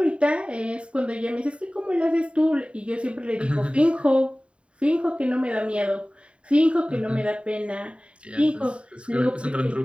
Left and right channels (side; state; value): left; late; 0.058 ms